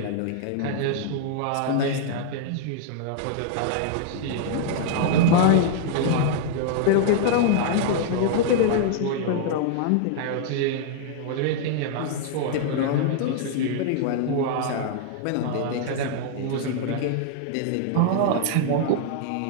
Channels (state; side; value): different; both; correlation -0.01